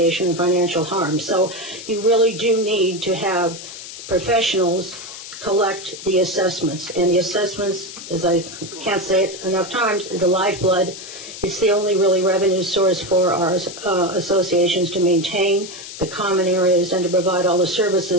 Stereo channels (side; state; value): left; noise; hiss, 12 dB below the sound